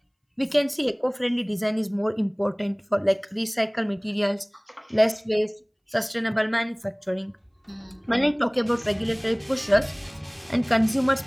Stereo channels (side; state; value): both; identical; correlation 1.00